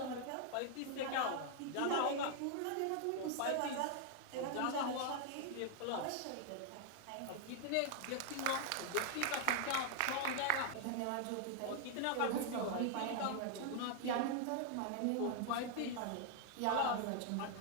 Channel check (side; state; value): both; different; correlation 0.00